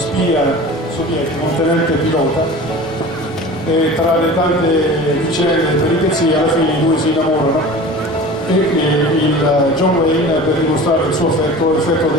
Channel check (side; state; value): both; normal; correlation 0.38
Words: sovietica, un tenente pilota, e tra le tante vicende e peripezie alla fine i due si innamorano, e il John Wayne, per dimostrare il suo affetto, effettua